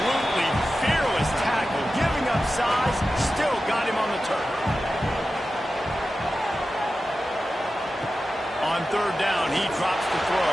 fearless tackle. Giving up size, still got him on the turf. On 3rd down, he drops the throw.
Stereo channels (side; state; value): both; normal; correlation 0.93